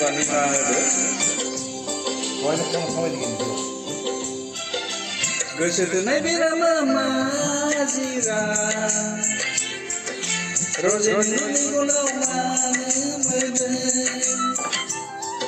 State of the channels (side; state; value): both; identical; correlation 1.00